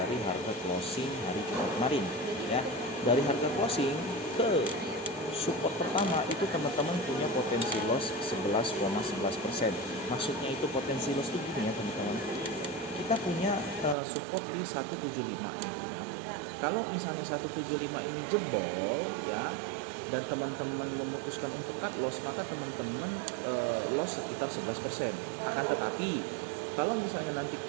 harga closing hari Jumat kemarin ya. Dari harga closing ke support pertama itu teman-teman punya potensi loss 11,11%. Maksudnya itu potensi loss itu gini ya teman-teman. Kita punya support di 175 ya. Kalau misalnya 175 ini jebol ya, dan teman-teman memutuskan untuk cut loss, maka teman-teman loss sekitar 11%. Akan tetapi kalau misalnya nanti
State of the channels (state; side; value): drops out; left; at 14.0 s